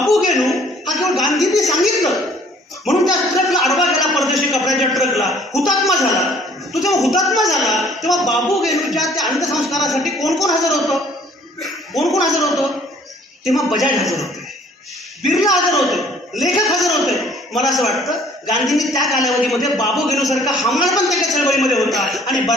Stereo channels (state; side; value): normal; both; correlation 0.56